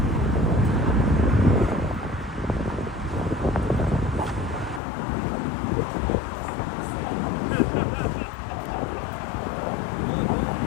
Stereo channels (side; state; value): right; drops out; at 4.8 s